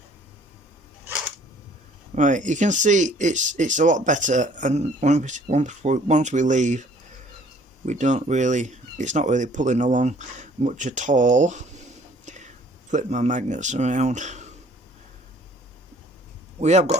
Right, you can see it's a lot better, and once we leave, it's not really pulling along much at all. Flip my magnets around. We have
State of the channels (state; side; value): normal; both; correlation 0.57